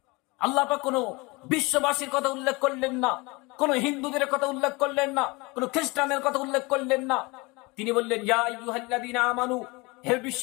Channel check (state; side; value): quieter; right; 25.4 dB